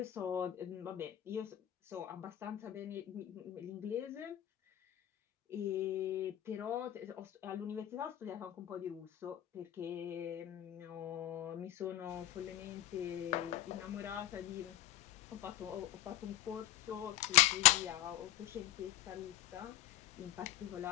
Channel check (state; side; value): quieter; right; 13.5 dB